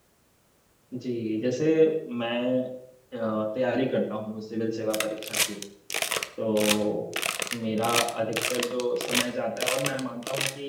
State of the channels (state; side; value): identical; both; correlation 1.00